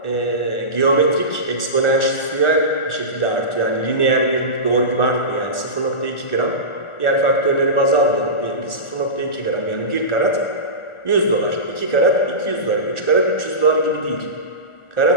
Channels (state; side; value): late; right; 1.4 ms